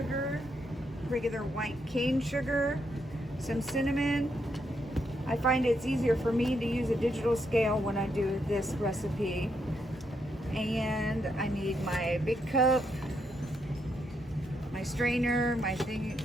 regular white cane sugar, some cinnamon. I find it's easier for me to use a digital scale when I do this recipe. And I need my big cup, my strainer, my thing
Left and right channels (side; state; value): both; normal; correlation 0.78